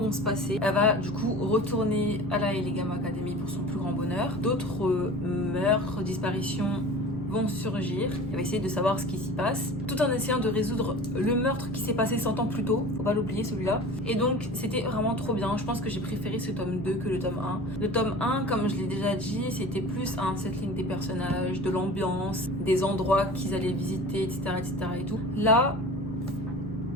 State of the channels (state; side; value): normal; both; correlation 0.38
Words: se passer. Elle va du coup retourner à la Elegam Academy pour son plus grand bonheur. D'autres meurtres, disparitions vont surgir. Elle va essayer de savoir ce qui s'y passe, tout en essayant de résoudre le meurtre qui s'est passé 100 ans plus tôt. Faut pas l'oublier celui-là. Et donc c'était vraiment trop bien. Je pense que j'ai préféré ce tome 2 que le tome 1. Le tome 1, comme je l'ai déjà dit, c'était plus un settling des personnages, de l'ambiance, des endroits qu'ils allaient visiter, etc. et tout. Là,